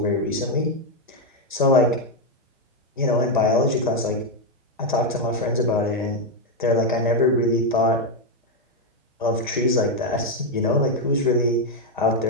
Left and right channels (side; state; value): both; normal; correlation 0.03